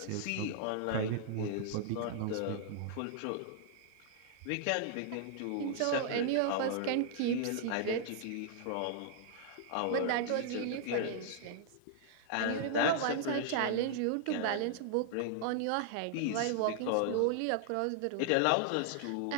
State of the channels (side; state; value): both; different; correlation -0.01